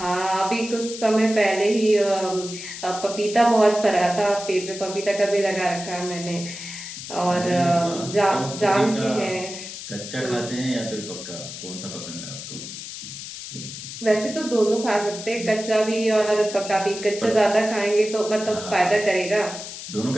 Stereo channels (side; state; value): left; noise; hiss, 10 dB below the sound